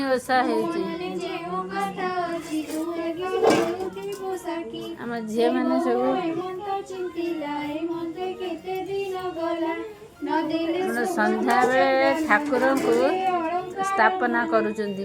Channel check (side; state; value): both; identical; correlation 1.00